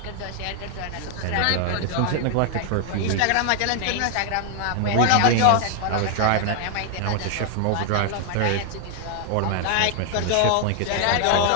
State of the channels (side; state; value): both; different; correlation 0.00